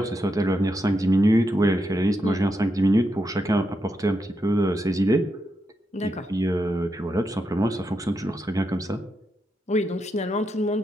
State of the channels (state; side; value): normal; both; correlation 0.84